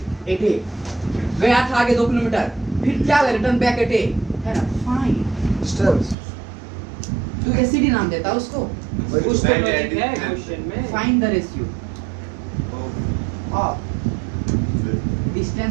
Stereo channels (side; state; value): left; drops out; at 6.2 s